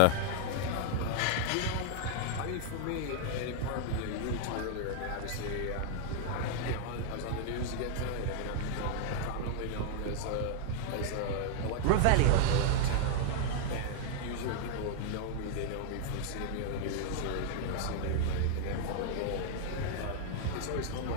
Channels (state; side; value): different; both; correlation -0.01